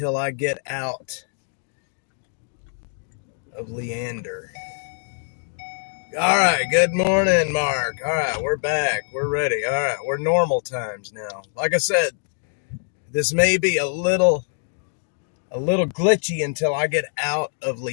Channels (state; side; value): silent; right; digital silence